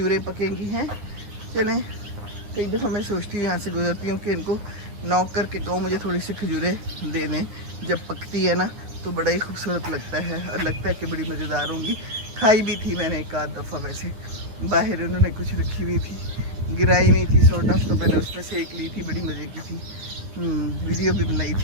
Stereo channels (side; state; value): left; late; 9.5 ms